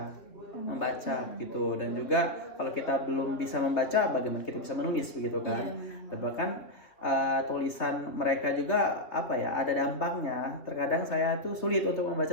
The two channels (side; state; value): right; late; 3.0 ms